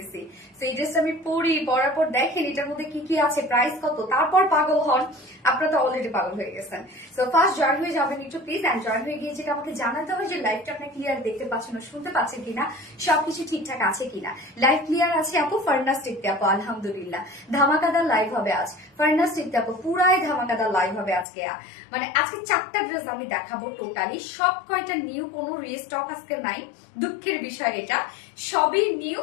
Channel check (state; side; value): drops out; right; at 21.2 s